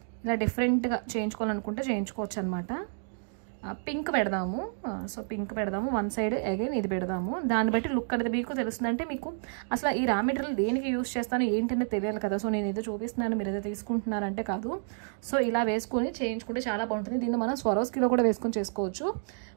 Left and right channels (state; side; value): silent; left; digital silence